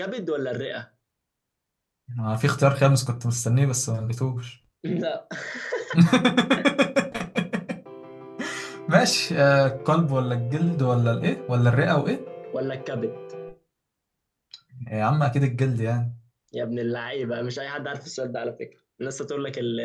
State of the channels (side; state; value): both; identical; correlation 1.00